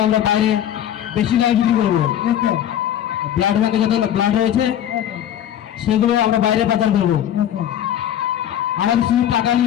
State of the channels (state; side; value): quieter; right; 10.7 dB